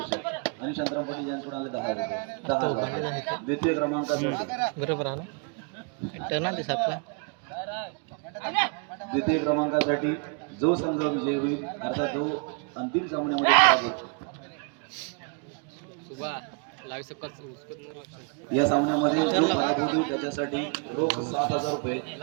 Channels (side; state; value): left; quieter; 36.5 dB